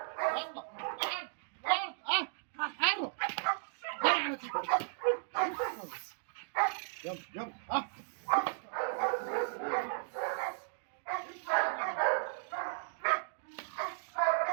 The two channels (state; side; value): silent; left; digital silence